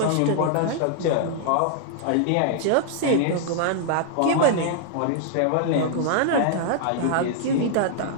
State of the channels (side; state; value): both; different; correlation -0.01